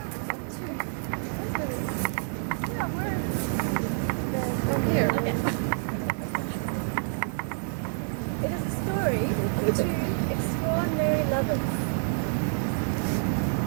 two. Yeah, we're here. Okay. It is the story of two extraordinary lovers.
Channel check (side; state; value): left; silent; digital silence